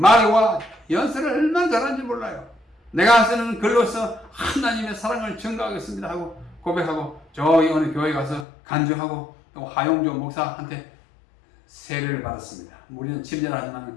말과 연설을 얼마나 잘하는지 몰라요. 내가 쓰는 글로서 하나님의 사랑을 증거하겠습니다 하고 고백하고 저기 어느 교회 가서 간증하고 또 하용조 목사한테 세례를 받았습니다. 우리는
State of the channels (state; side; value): drops out; right; at 8.5 s